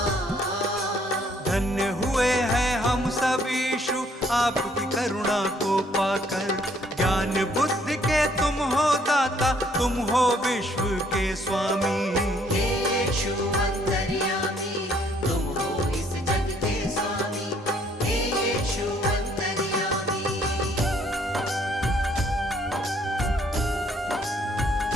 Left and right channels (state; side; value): normal; both; correlation 0.65